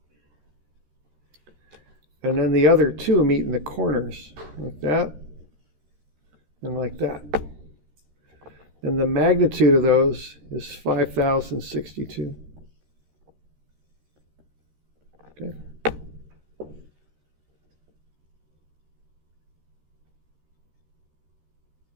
And then the other two meet in the corners, like that and like that. And the magnitude of those is 5,062. Okay.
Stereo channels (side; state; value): left; late; 13 ms